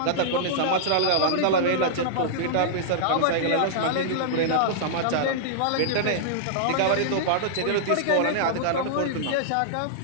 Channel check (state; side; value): different; both; correlation -0.01